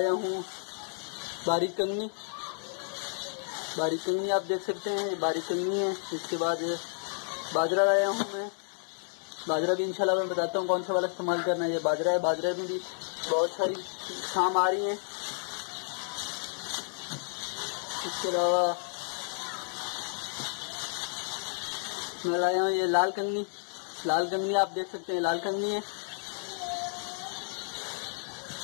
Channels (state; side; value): silent; right; digital silence